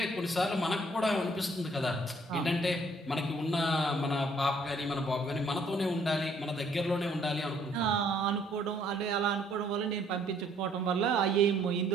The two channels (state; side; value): normal; both; correlation 0.64